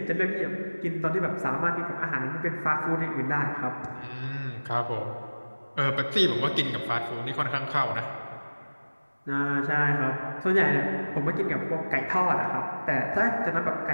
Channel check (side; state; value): both; inverted; correlation -1.00